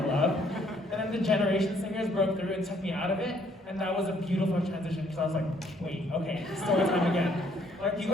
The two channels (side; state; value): both; normal; correlation 0.66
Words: love. And then the Generation Singers broke through and took me out of it, and that was a beautiful transition, because I was like, wait, okay, story time again. Like, you